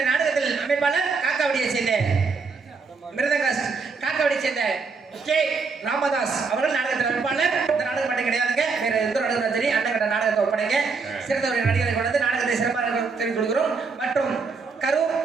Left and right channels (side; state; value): left; quieter; 4.7 dB